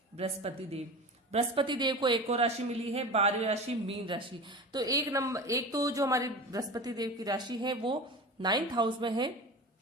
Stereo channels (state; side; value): normal; both; correlation 0.32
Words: बृहस्पति देव। बृहस्पति देव को एक और राशि मिली है, 12वीं राशि मीन राशि। तो एक तो जो हमारी बृहस्पति देव की राशि है वो 9th हाउस में है,